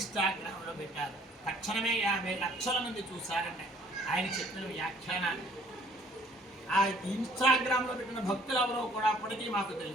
పెట్టారు. తక్షణమే 50 లక్షల మంది చూశారండి ఆయన చెప్పిన వ్యాఖ్యానాన్ని. ఆ ఇన్స్టాగ్రామ్లో పెట్టిన భక్తులు ఎవరో కూడా అప్పటికీ మాకు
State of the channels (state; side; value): normal; both; correlation 0.58